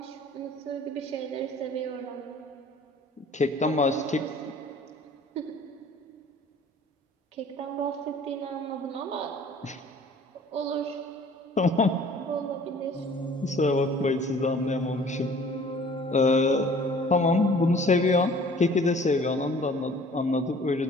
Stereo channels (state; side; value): normal; both; correlation 0.50